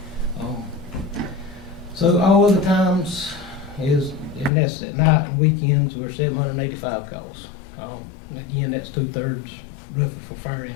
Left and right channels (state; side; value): drops out; right; at 4.5 s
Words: So all other times is, and that's at night and weekends, we're 785 calls. Again, that's 2/3 roughly for fire